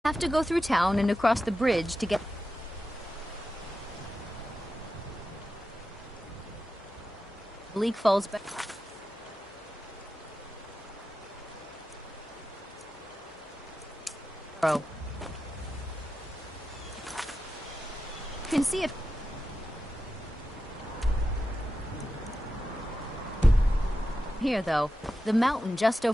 Have to go through town and across the bridge to get... Bleak Falls Barrow. Can see it. Here, though, the mountain just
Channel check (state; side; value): normal; both; correlation 0.91